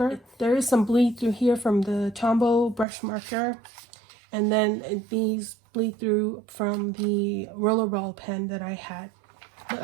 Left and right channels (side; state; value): left; drops out; at 2.9 s